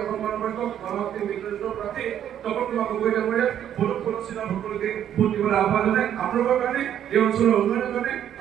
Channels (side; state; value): left; quieter; 10.2 dB